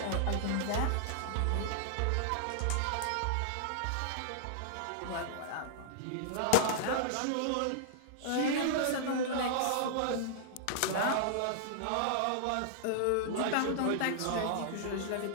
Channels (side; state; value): both; different; correlation -0.01